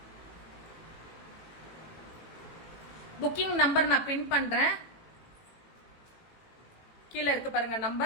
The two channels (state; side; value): late; right; 18 ms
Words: புக்கிங் நம்பர் நான் பின் பண்றேன், கீழே இருக்கு பாருங்க